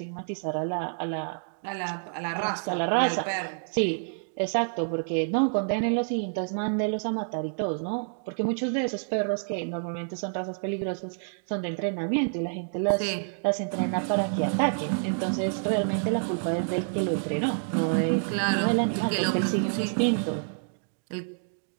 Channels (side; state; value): left; silent; digital silence